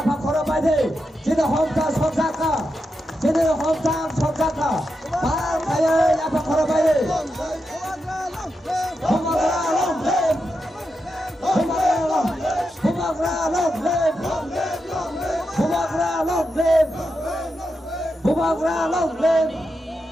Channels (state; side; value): normal; both; correlation 0.87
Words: Pak Korobali. Jadi hometown Sonjaka. Jadi hometown Sonjaka. Pak kaya ya Pak Korobali. Bumagra long live. Bumagra long live. Bumagra long live. Bumagra long live.